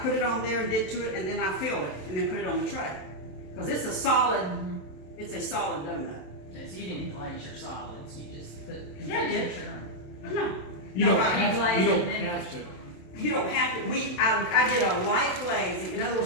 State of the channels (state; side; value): late; right; 27 ms